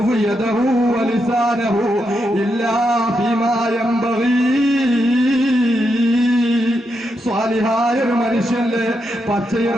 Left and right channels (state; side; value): normal; both; correlation 0.83